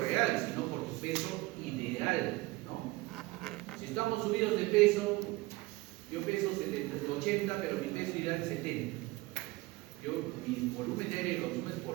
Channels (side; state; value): left; quieter; 21.0 dB